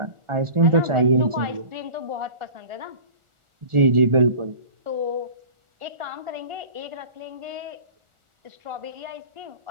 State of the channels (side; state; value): left; late; 1.4 ms